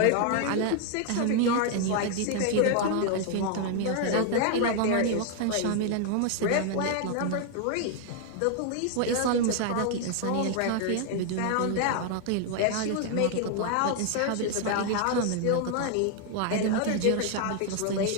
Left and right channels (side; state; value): both; different; correlation 0.00